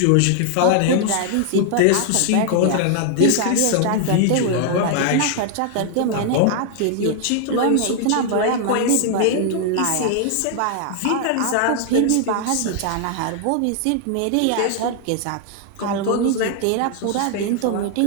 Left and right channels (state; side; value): different; both; correlation 0.00